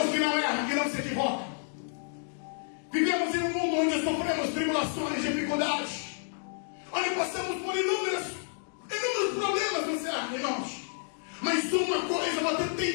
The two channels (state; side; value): silent; right; 58 dB below the other